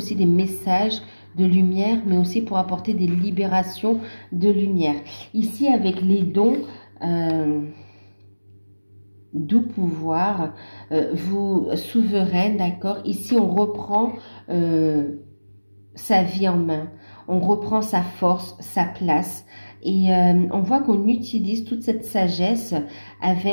des messages de lumière, mais aussi pour apporter des libérations de lumière. Ici, avec les dons, doux pouvoir, vous souveraine, d'accord? Ici, on reprend sa vie en main. On reprend sa force, sa place. Et on voit qu'on utilise toute cette sagesse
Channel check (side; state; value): both; inverted; correlation -1.00